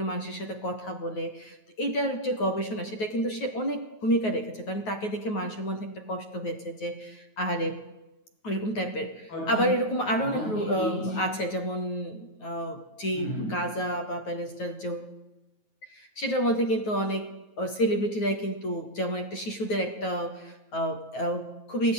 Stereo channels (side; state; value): right; late; 9.3 ms